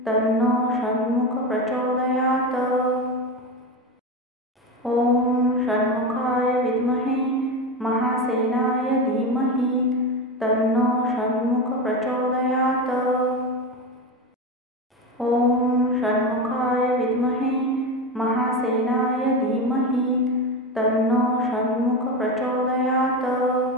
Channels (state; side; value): normal; both; correlation 0.20